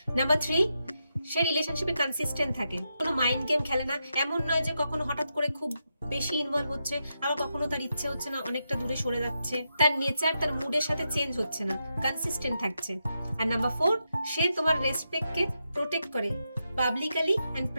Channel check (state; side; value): inverted; both; correlation -0.85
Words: নাম্বার 3, সে রিলেশনশিপে কনসিস্টেন্ট থাকে, কোনো মাইন্ড গেম খেলে না। এমন নয় যে কখনো হঠাৎ করে খুব বেশি ইনভলভ হচ্ছে, আবার কখনো তার ইচ্ছে হচ্ছে না, অনেকটা দূরে সরে যাচ্ছে। তার নেচার তার মুডের সাথে চেঞ্জ হচ্ছে না, কনসিস্টেন্ট থাকছে। আর নাম্বার 4, সে তোমার রেসপেক্টকে প্রোটেক্ট করে, পাবলিকলি অ্যান্ড